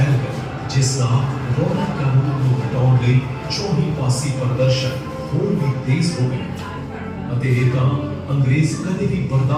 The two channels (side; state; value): both; identical; correlation 1.00